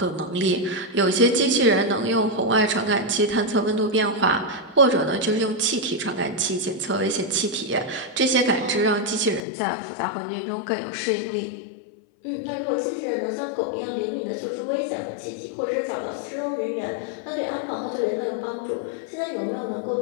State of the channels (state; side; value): drops out; right; at 9.4 s